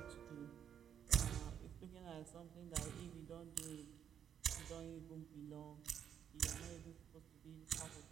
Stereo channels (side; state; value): left; quieter; 8.8 dB